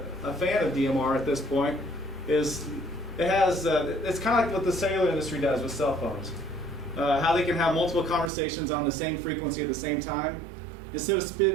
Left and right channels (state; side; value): drops out; left; at 8.3 s